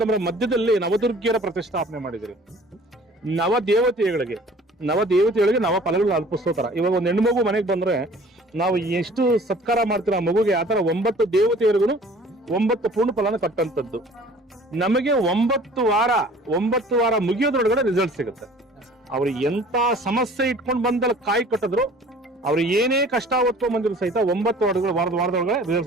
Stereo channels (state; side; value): normal; both; correlation 0.49